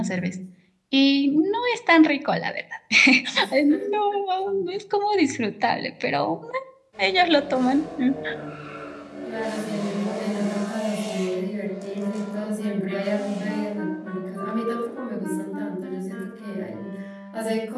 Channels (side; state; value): both; identical; correlation 1.00